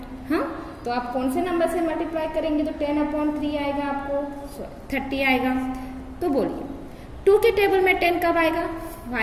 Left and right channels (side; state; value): both; identical; correlation 1.00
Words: हाँ, तो आप कौन से नंबर से मल्टीप्लाई करेंगे तो 10/3 आएगा, आपको 30 आएगा। तो बोलिए 2 के टेबल में 10 कब आएगा